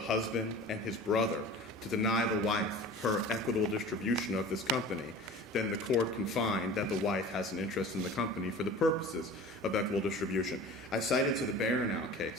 and his brother to deny the wife her equitable distribution of this company, then the court can find that the wife has an interest in the company for the purposes of equitable distribution. I cited to the Baranow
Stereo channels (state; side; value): normal; both; correlation 0.39